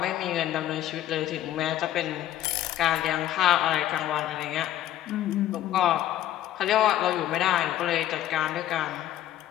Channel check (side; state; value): right; quieter; 12.8 dB